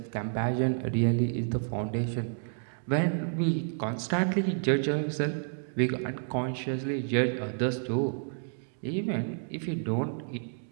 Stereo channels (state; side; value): silent; left; digital silence